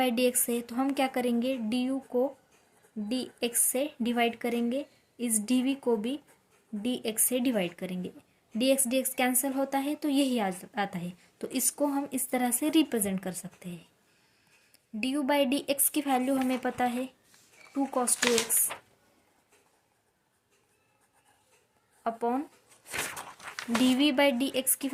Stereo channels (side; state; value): both; identical; correlation 1.00